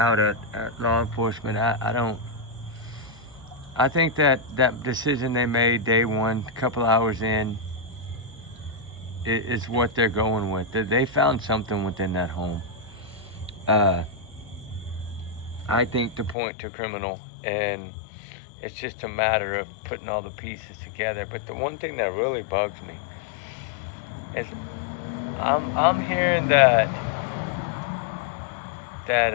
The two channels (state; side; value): drops out; right; at 16.4 s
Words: at law enforcement. I don't. I think that decision they made day one, a couple hours in, is what they're going with. They found something within that home. Uh, I think to point to criminal, and it's just a matter of putting all the pieces together. But the one thing that really bugs me is I'm hearing that